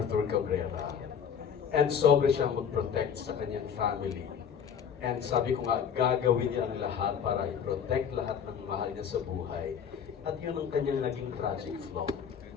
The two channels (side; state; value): right; quieter; 7.7 dB